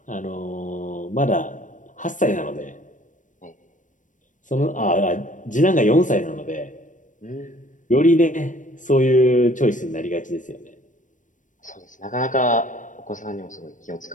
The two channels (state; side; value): late; right; 0.37 ms